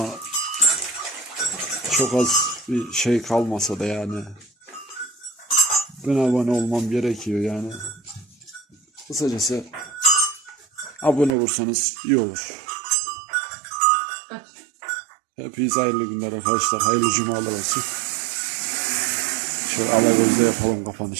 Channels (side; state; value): left; drops out; at 11.3 s